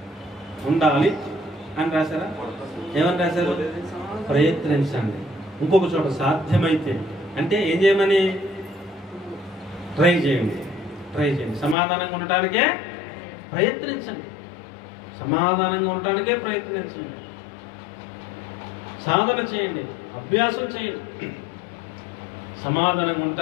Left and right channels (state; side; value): drops out; right; at 11.8 s